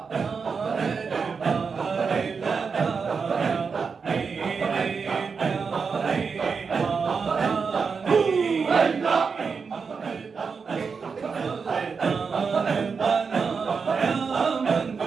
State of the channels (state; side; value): quieter; left; 5.4 dB